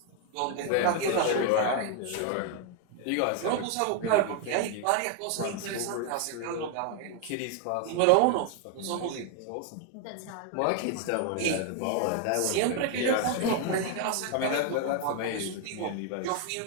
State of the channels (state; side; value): different; both; correlation 0.01